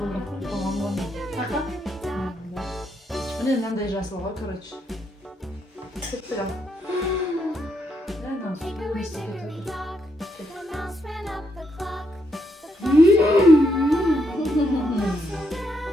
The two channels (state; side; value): normal; both; correlation 0.77